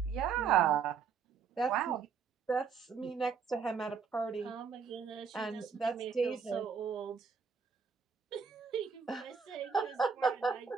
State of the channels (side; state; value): left; quieter; 6.1 dB